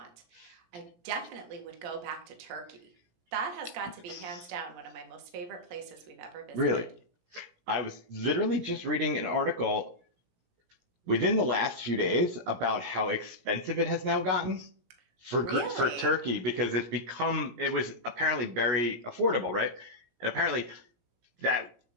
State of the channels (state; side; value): late; left; 17 ms